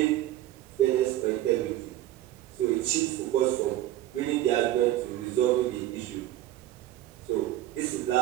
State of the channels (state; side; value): quieter; left; 14.2 dB